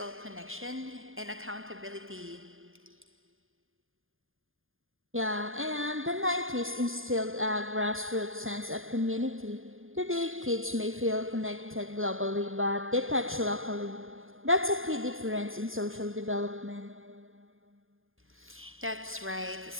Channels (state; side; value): late; left; 0.59 ms